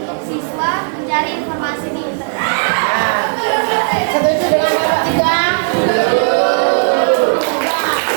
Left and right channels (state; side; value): silent; left; digital silence